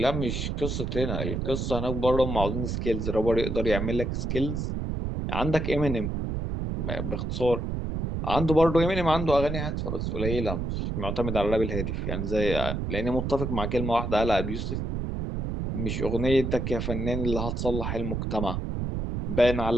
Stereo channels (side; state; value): right; noise; rumble, 2 dB below the sound